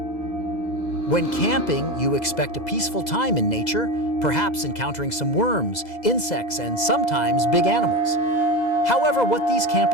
When camping, you expect a peaceful time in nature, perhaps encountering some worms, insects, and sometimes big animals. However, what these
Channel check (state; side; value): late; right; 2.0 ms